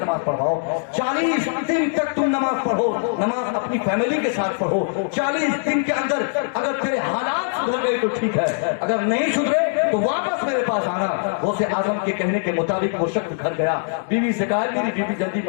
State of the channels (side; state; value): right; silent; digital silence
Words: नमाज पढ़वाओ, 40 दिन तक तुम नमाज पढ़ो, नमाज अपनी फैमिली के साथ पढ़ो। 40 दिन के अंदर अगर तेरे हालात सुधर गए तो ठीक है, अगर नहीं सुधरे तो वापस मेरे पास आना। गौसे आजम के कहने के मुताबिक वो शख्स घर गया, बीवी से कहा, मेरी बीवी जल्दी